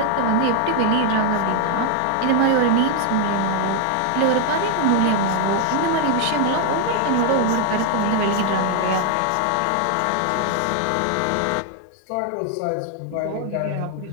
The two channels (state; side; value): different; both; correlation 0.00